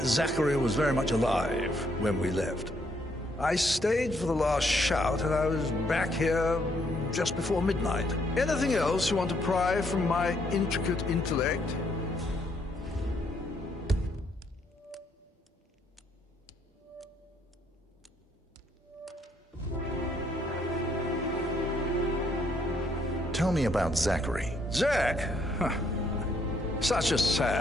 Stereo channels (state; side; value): normal; both; correlation 0.71